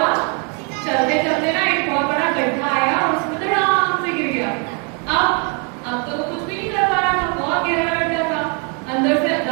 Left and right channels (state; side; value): quieter; left; 36.4 dB